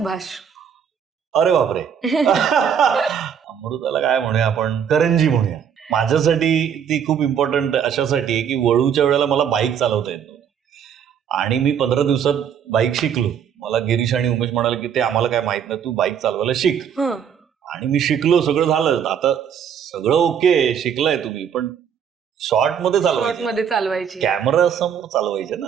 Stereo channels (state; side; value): quieter; left; 8.1 dB